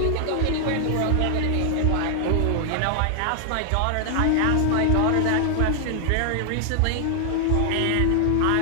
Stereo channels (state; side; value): different; both; correlation 0.00